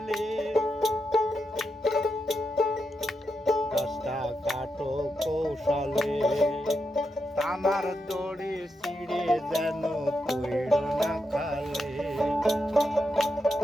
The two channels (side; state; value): both; normal; correlation 0.85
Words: গাছটা কাটো কৌশলে। টানার দড়ি ছিঁড়ে যেন পড়িল না খালে।